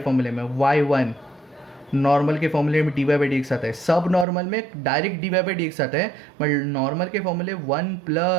में y1 नॉर्मल के फॉर्मूले में d Y by D x आता है, सब नॉर्मल में direct d Y by D x आता है, बट नॉर्मल के फॉर्मूले 1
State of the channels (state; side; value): drops out; left; at 4.2 s